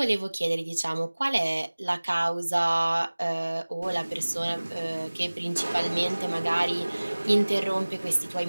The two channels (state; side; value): inverted; both; correlation -1.00